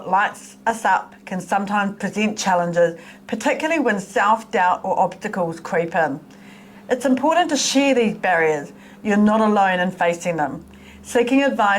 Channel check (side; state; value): both; identical; correlation 1.00